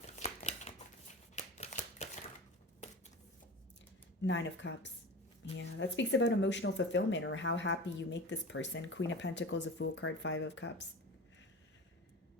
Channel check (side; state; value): both; normal; correlation 0.31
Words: Nine of Cups. Yeah, that speaks about emotional fulfillment or how happy you make this person. Queen of Pentacles, a Fool card, Five of Cups.